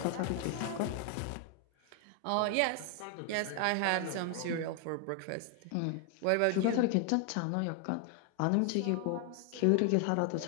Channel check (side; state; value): both; different; correlation 0.01